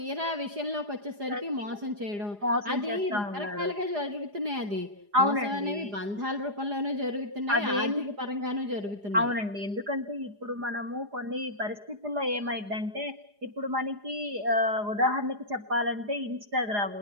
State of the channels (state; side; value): late; left; 4.9 ms